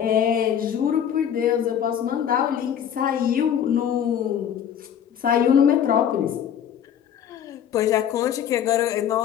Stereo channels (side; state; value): right; quieter; 9.1 dB